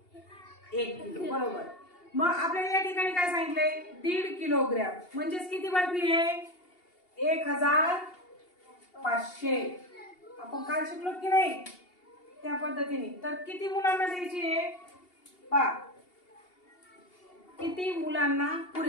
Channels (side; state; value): right; late; 2.8 ms